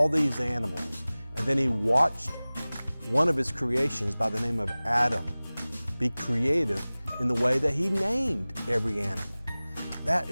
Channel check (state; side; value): inverted; both; correlation -0.99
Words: these animals. And then He watched one of His creations by the name of Adam be creative in the way that He named every animal. That